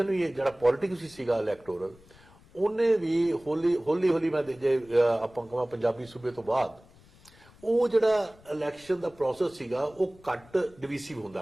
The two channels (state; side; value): noise; left; rumble, 26 dB below the sound